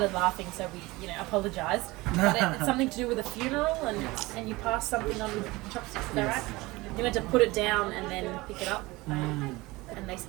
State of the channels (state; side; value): quieter; left; 21.4 dB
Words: laughing, so we, apologized. But it's something to do with a funeral, and you pass something on with chopsticks. Is that right? You meant to put it down and then pick it up. And they